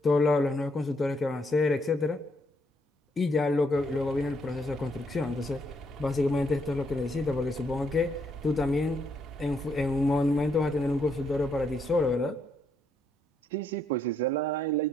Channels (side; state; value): both; normal; correlation 0.74